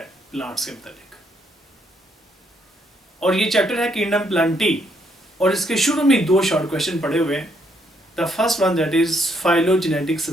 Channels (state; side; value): normal; both; correlation 0.73